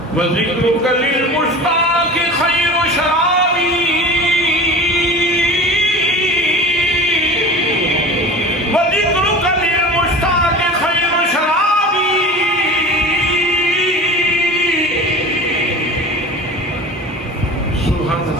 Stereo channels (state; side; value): normal; both; correlation 0.36